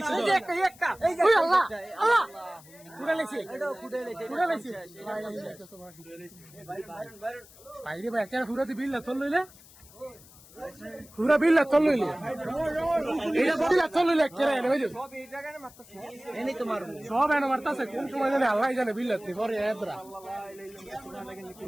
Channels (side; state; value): left; noise; hiss, 23 dB below the sound